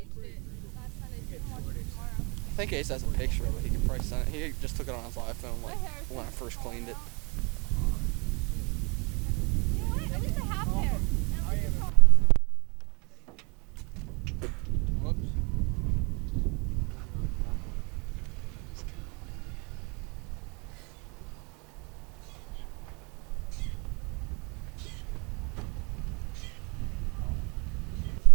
it last Sunday, so you can watch it tomorrow. I think Ace has a picture of it. He could probably send it. He just took it on his iPhone like My hair is when I first cleaned it. You know what? At least I have hair. And at least it's not- Whoops.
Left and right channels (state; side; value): quieter; left; 30.8 dB